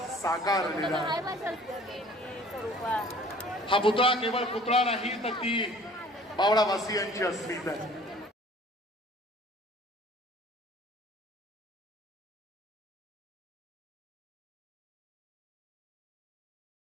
साकारलेलं आहे. हा पुतळा केवळ पुतळा नाही, तर ती बावडावासियांची अस्मिता आहे.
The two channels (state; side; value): normal; both; correlation 0.51